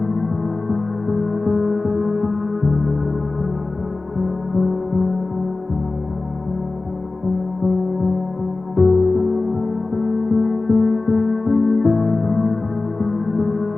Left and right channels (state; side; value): quieter; right; 3.4 dB